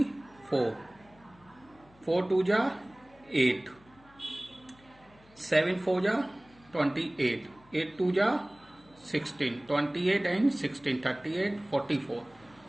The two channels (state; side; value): noise; left; hum, 27 dB below the sound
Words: 4 2 ja 8, 7 4 ja 28, 8 2 ja 16, 28 and 16, 38 44,